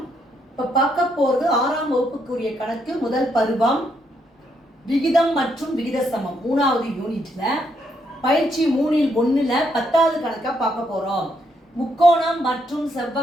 இப்போ பார்க்க போகிறது 6ஆம் வகுப்புக்குரிய கணக்கு முதல் பருவம் விகிதம் மற்றும் விகித சமம் 3வது யூனிட்ல பயிற்சி 3ல் 1ல் 10வது கணக்கா பார்க்க போறோம். முக்கோணம் மற்றும்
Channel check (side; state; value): both; normal; correlation 0.75